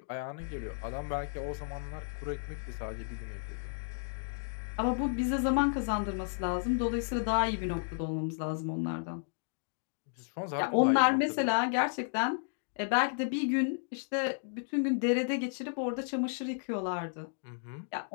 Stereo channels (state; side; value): silent; right; digital silence